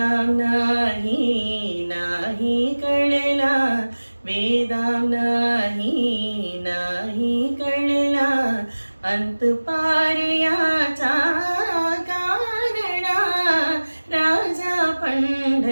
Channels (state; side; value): inverted; both; correlation -1.00